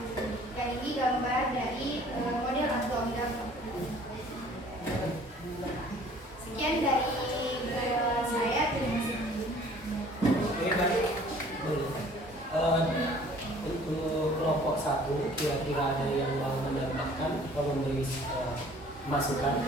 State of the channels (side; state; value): both; normal; correlation 0.53